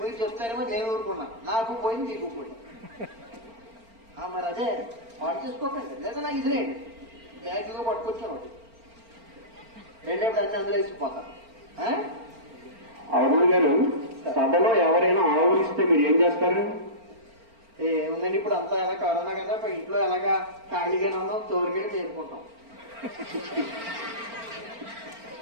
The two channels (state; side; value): late; left; 4.4 ms